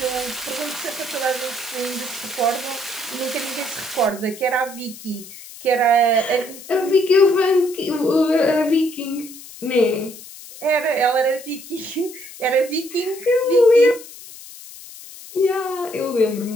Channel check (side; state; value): left; noise; hiss, 16 dB below the sound